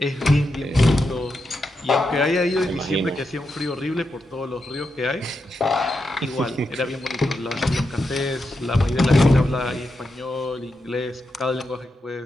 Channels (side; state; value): both; normal; correlation 0.86